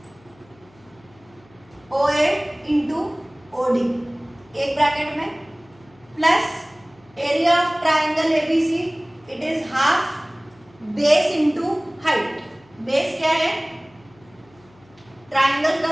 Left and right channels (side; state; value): left; noise; hum, 29 dB below the sound